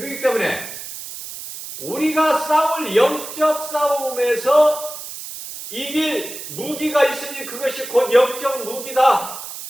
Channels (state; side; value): noise; right; hiss, 10 dB below the sound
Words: 때문에 우리가 싸울 영적 싸움에서 이길 무기가 있으니 그것이 곧 영적 무기다.